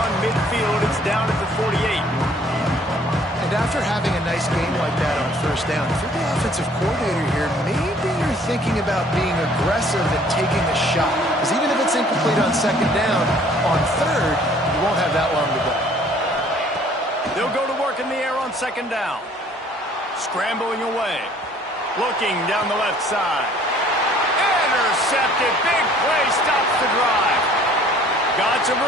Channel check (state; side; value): normal; both; correlation 0.56